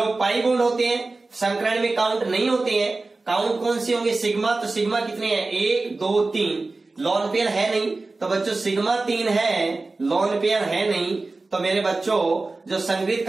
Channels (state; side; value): quieter; left; 3.4 dB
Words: पाई बॉन्ड होते हैं संकरण में काउंट नहीं होते हैं, काउंट कौन से होंगे, सिग्मा, तो सिग्मा कितने हैं, 1 2 3, लॉन पेयर है नहीं, तो बच्चों सिग्मा 3 है, लॉन पेयर है नहीं, तो मेरे बच्चों जो संगृहीत